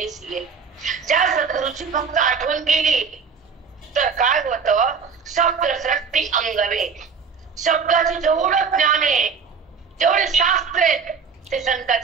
सिये. ज्या सद्गुरूची फक्त आठवण केली तर काय होतं, शब्दसृष्टी अंगवे. शब्दाचे जेवढं ज्ञान आहे, जेवढे शास्त्र आहेत, ते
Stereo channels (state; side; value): quieter; left; 5.8 dB